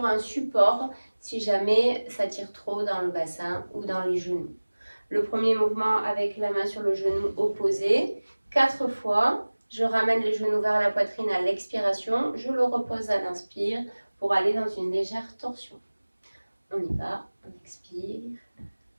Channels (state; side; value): inverted; both; correlation -1.00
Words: un support si jamais ça tire trop dans le bassin ou dans les genoux. Le premier mouvement avec la main sur le genou opposé. 4 fois. Je ramène les genoux vers la poitrine à l'expiration. Je le repose à l'inspire pour aller dans une légère torsion. On y va. On expire